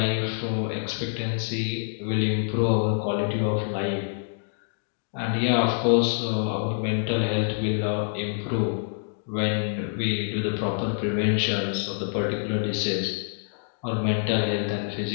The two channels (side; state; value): right; silent; digital silence